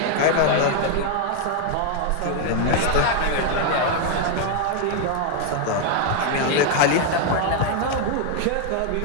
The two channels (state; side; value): different; both; correlation 0.00